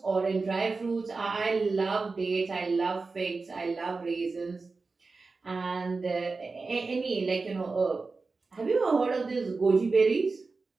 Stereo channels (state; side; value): quieter; left; 4.0 dB